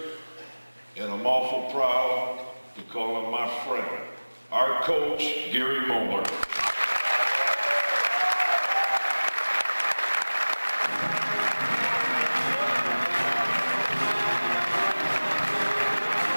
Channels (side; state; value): both; inverted; correlation -1.00